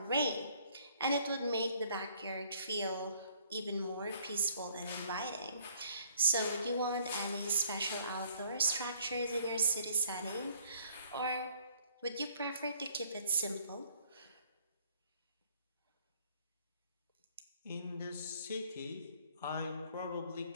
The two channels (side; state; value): both; inverted; correlation -0.62